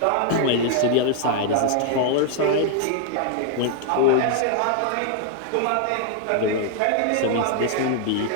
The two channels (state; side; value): different; both; correlation 0.00